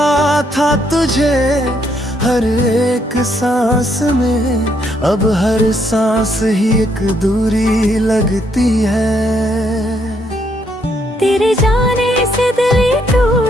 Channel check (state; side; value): normal; both; correlation 0.73